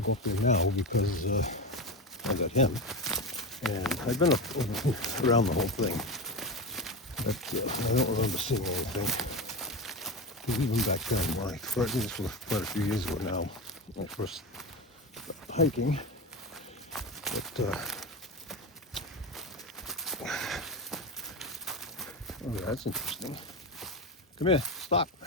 go up there now because I got him, and I've been around the whole thing, but I don't remember seeing anything. Because even back then, this was quite a few years ago now, when I first hiking. But oh yeah, that's interesting. Come here, stop.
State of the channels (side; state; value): both; normal; correlation 0.20